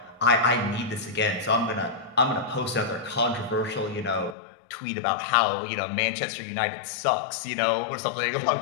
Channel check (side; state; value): right; drops out; at 4.4 s